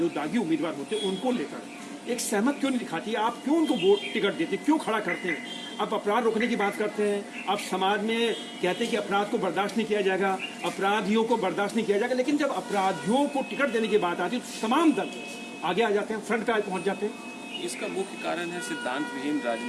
दागी उम्मीदवार होते हैं उनको लेकर एक सहमत क्यों नहीं दिखाती? आप क्यों उनको वोट टिकट देते, क्यों खड़ा करते हैं? आप अपराध रोकने की बात करते हैं, आप समाज में कहते हैं कि अपराध को बर्दाश्त नहीं किया जाएगा, अपराधियों को बर्दाश्त नहीं किया जाएगा, लेकिन जब अपराधियों को टिकट देने की बात आती है तो तमाम दल आगे आ जाते हैं, फ्रंट पे पहुंच जाते हैं। इसका मुख्य कारण है सिद्धांत विहीन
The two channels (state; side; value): identical; both; correlation 1.00